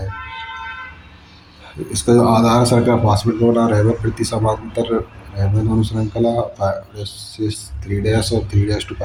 इसका जो आधार है शर्करा फॉस्फेट का बना रहता है, प्रति समांतर रहने दोनों श्रृंखला 3' और 3' to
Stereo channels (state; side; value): identical; both; correlation 1.00